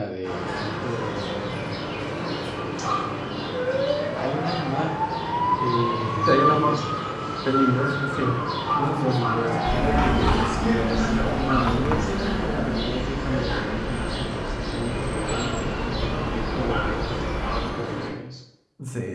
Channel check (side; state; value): both; identical; correlation 1.00